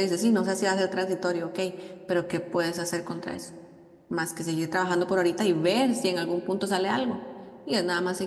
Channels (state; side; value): identical; both; correlation 1.00